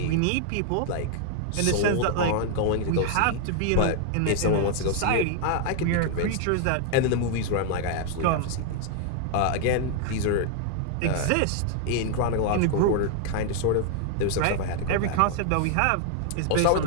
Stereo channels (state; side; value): different; both; correlation 0.00